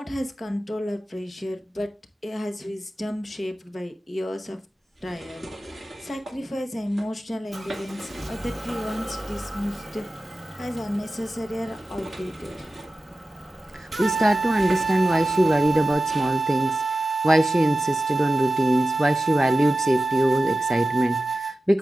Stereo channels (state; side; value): normal; both; correlation 0.94